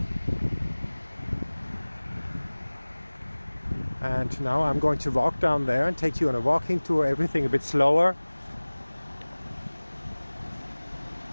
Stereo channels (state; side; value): inverted; both; correlation -1.00